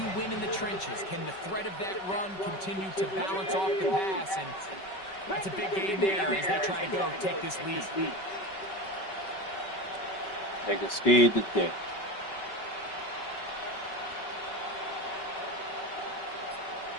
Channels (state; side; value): late; right; 5.2 ms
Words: win in the trenches? Can the threat of that run continue to balance off the pass? And that's a big game there as they try to go take this lead. Nigga scared to death.